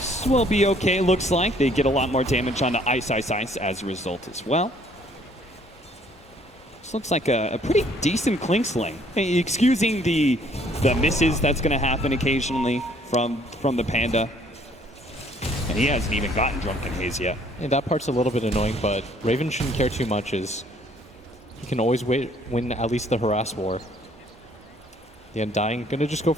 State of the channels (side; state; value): both; normal; correlation 0.61